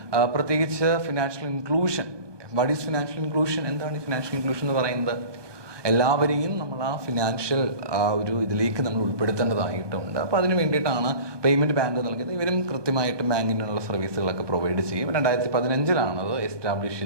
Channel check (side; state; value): left; late; 1.2 ms